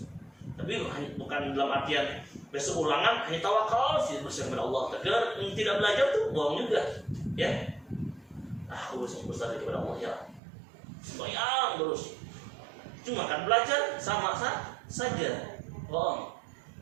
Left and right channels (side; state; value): left; drops out; at 10.4 s